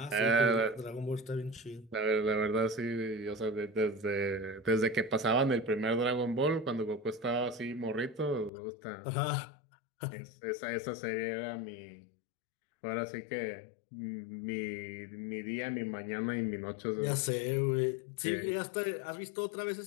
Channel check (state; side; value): drops out; right; at 8.5 s